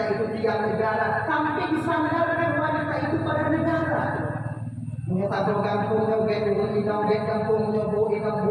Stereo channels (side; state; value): both; identical; correlation 1.00